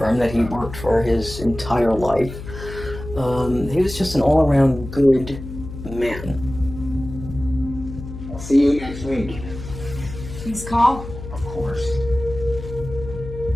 that he worked for his entire life. He was just an all-around good man. I'll see you next week. Please call. Of course.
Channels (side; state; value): left; noise; hum, 11 dB below the sound